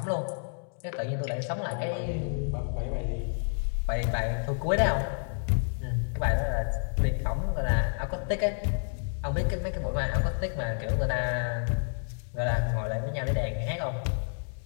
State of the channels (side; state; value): right; silent; digital silence